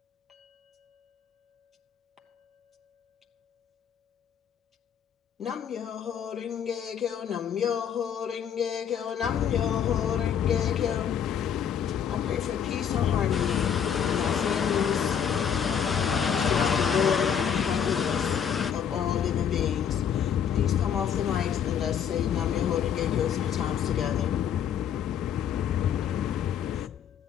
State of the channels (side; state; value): right; quieter; 8.3 dB